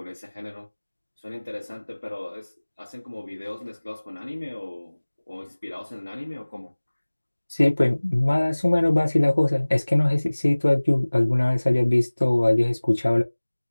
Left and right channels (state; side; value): inverted; both; correlation -1.00